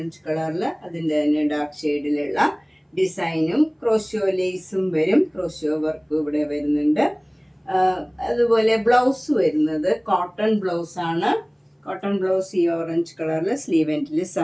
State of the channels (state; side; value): identical; both; correlation 1.00